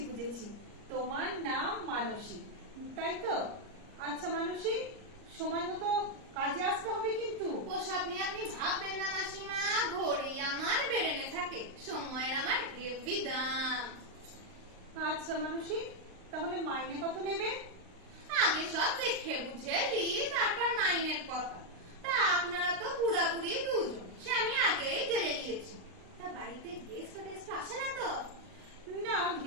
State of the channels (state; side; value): late; left; 38 ms